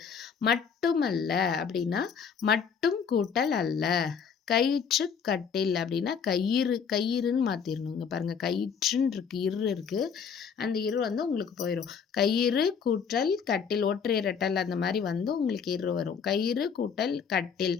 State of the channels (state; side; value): quieter; right; 6.6 dB